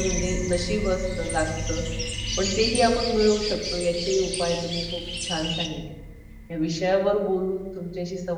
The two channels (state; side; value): identical; both; correlation 1.00